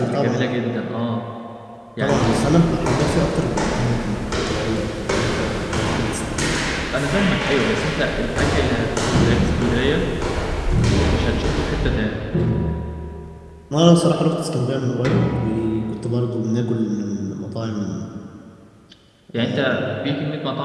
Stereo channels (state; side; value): identical; both; correlation 1.00